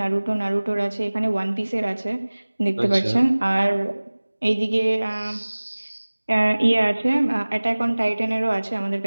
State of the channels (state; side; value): inverted; both; correlation -1.00